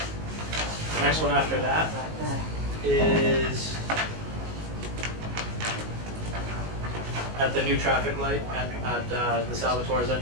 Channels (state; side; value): late; left; 19 ms